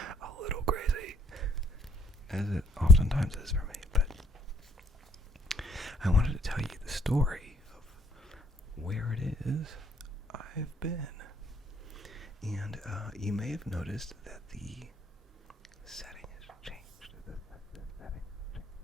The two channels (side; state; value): both; normal; correlation 0.65